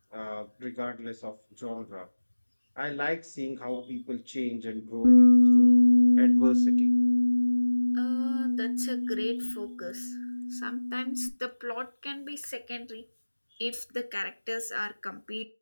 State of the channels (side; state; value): both; inverted; correlation -1.00